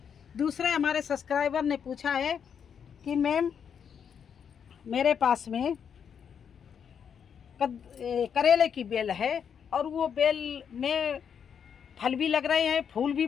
दूसरा, हमारे सब्सक्राइबर ने पूछा है कि मैम मेरे पास में करेले की बेल है और वो बेल में फल भी लग रहे हैं, फूल भी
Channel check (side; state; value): right; quieter; 7.5 dB